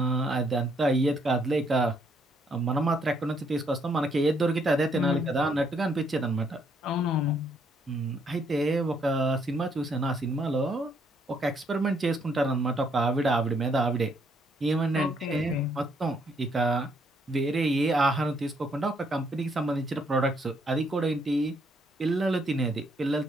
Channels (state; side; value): normal; both; correlation 0.70